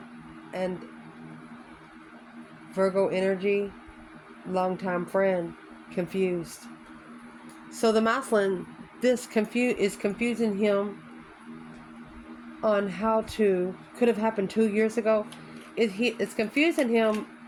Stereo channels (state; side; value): identical; both; correlation 1.00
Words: and Virgo energy, longtime friend, confused. So the masculine, this is confusing him on how to, could have happened 2 years ago. It's confusing him